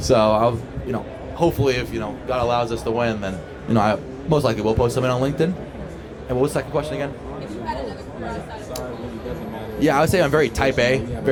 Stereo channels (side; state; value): both; identical; correlation 1.00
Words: I'll, hopefully if, God allows us to win, then, I most likely will post something on LinkedIn. And what was the second question again? Yeah, I would say I'm very type A